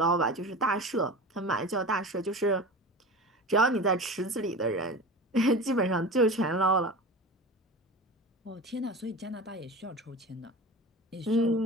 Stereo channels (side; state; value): both; normal; correlation 0.32